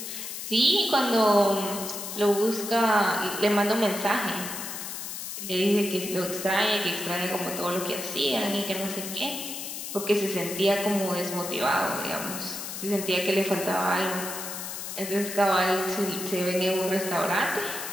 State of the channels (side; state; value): left; noise; hiss, 7 dB below the sound